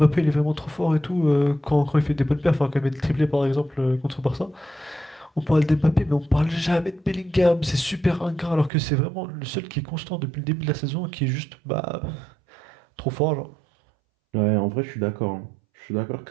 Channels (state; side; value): drops out; left; at 8.7 s